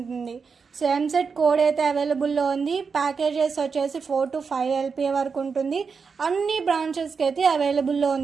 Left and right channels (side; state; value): left; quieter; 5.4 dB